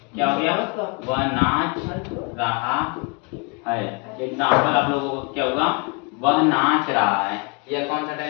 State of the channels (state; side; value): quieter; right; 32.7 dB